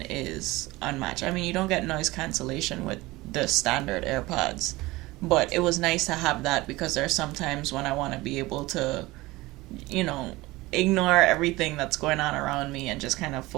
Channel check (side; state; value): left; quieter; 20.3 dB